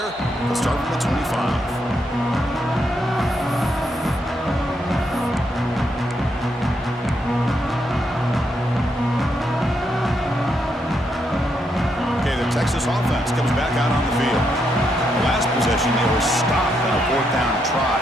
He'll start from the 25. Texas offense comes back out on the field. The last possession, they were stopped on a fourth down try.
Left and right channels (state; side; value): normal; both; correlation 0.79